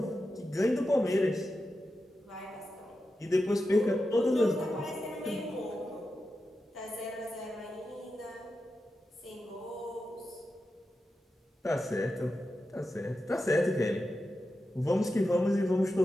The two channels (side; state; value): both; normal; correlation 0.90